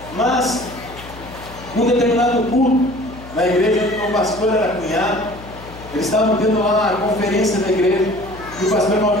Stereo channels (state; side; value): noise; left; hum, 17 dB below the sound